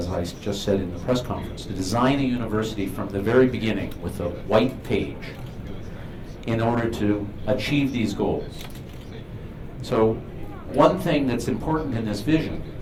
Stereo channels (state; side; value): identical; both; correlation 1.00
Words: I just said in the press conference, to design a university from the very beginning with a white page in order to achieve these goals. So one thing that's important in this vision